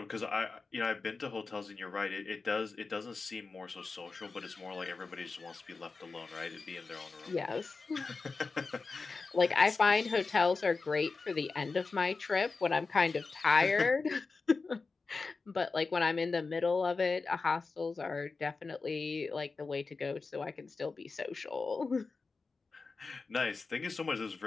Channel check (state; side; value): quieter; right; 4.2 dB